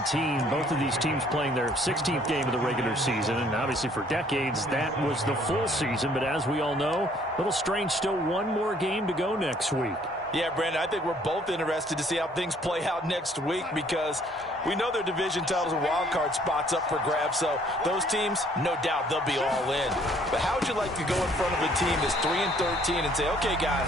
Both of these teams playing their 16th game of the regular season. And obviously for decades, that was the full season. But as we all know, a little strange, still one more game to go next week. Yeah, Brandon, I think we're both interested to see how things play out next week because we know their division titles and wild card spots up for grabs, so those teams, no doubt, they'll be all in. But how would you like to go in front of a team that's 3-13 and say, okay, guys,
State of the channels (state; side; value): normal; both; correlation 0.61